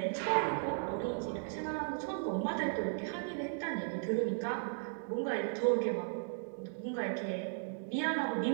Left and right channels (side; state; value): left; silent; digital silence